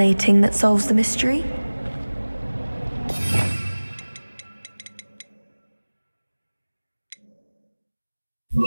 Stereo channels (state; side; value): inverted; both; correlation -1.00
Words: that solves the mystery.